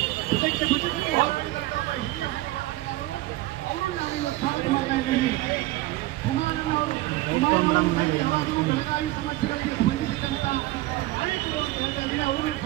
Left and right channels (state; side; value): quieter; left; 18.0 dB